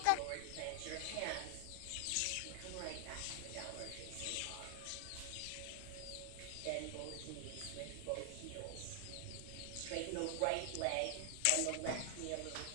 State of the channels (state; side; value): different; both; correlation 0.00